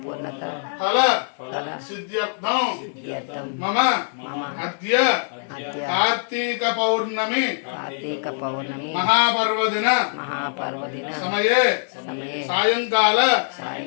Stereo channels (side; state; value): right; silent; digital silence